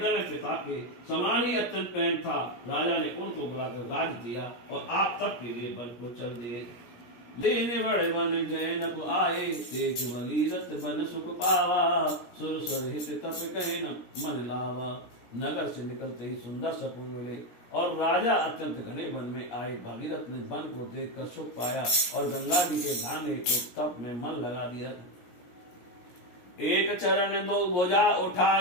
में पिता के समान ही अत्यंत प्रेम था। राजा ने उनको बुलाकर राज दिया और आप तप के लिए वन को चल दिए। लेने बड़े वन जैनप आए देख भगीरथ बन सुख पावा। सुर स्वर हित तप कहे न मन लावा। नगर से निकलते ही सुंदर सकुन मिले और राजा अत्यंत घने वन में आए। भागीरथ ने वन को देखकर सुख पाया और गंगा जी के नहाने को तप में मन लगा दिया। एक चरण दो भुजा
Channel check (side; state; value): right; late; 17 ms